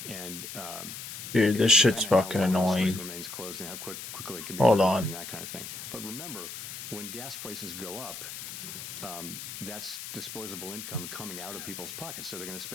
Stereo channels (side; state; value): left; noise; hiss, 9 dB below the sound